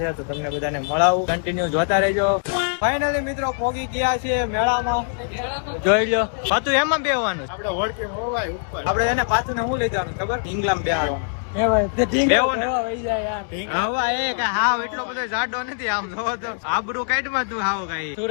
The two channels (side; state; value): right; silent; digital silence